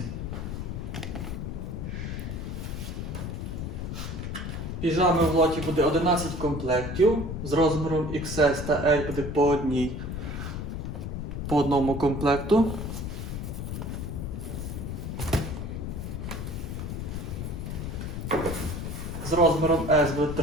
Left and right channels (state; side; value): noise; left; rumble, 5 dB below the sound